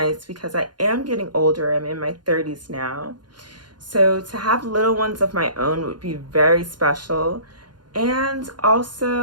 because I am getting older. I'm in my 30s now. So to have little ones of my own would be very special. And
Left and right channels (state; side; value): late; left; 0.71 ms